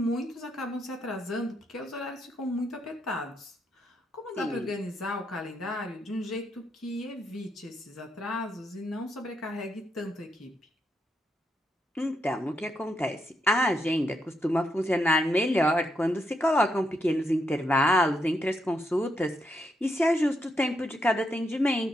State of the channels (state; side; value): normal; both; correlation 0.80